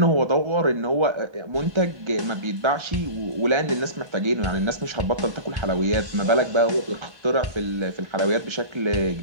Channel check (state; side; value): late; left; 1.2 ms